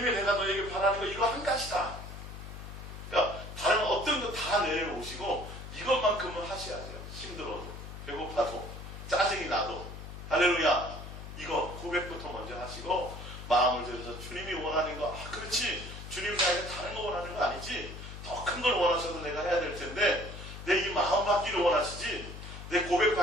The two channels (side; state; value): left; noise; hum, 11 dB below the sound